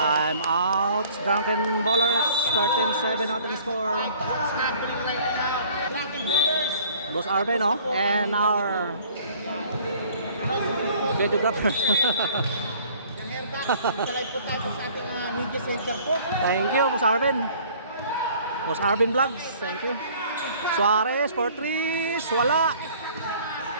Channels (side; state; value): both; inverted; correlation -0.54